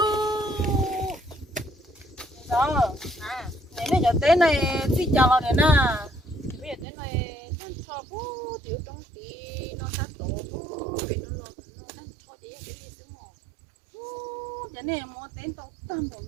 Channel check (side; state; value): left; drops out; at 6.9 s